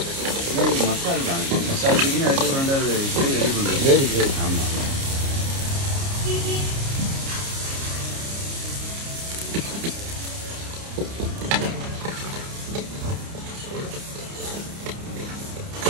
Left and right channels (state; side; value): late; left; 29 ms